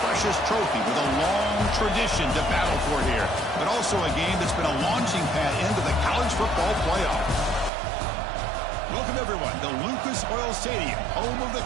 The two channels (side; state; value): left; drops out; at 7.7 s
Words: trophy with a long tradition to battle for here. But also a game that's been a launching pad into the college football playoff. Welcome, everyone, to Lucas Oil Stadium, home of the